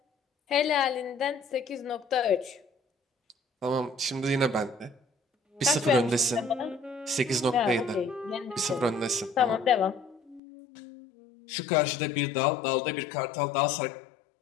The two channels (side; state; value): right; drops out; at 10.4 s